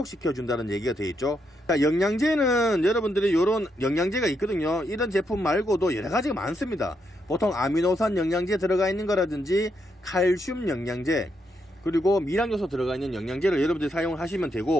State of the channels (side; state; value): both; normal; correlation 0.79